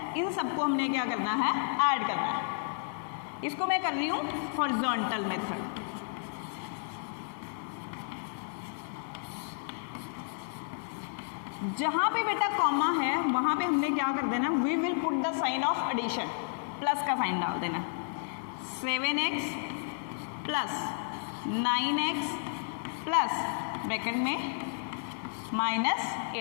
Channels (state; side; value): silent; right; digital silence